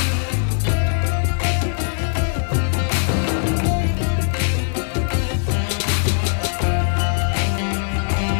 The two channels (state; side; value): silent; right; 62 dB below the other